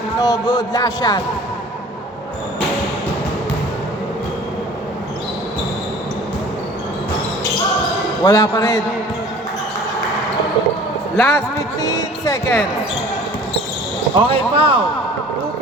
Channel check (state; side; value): normal; both; correlation 0.47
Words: no good. Last shot. Wala pa rin. Last 15 seconds. Okay, foul. 2